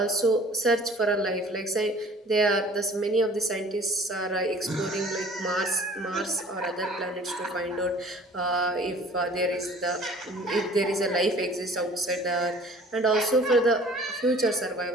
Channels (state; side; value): normal; both; correlation 0.50